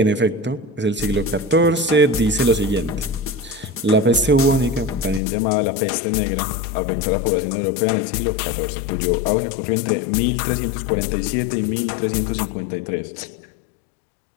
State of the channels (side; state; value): right; drops out; at 5.2 s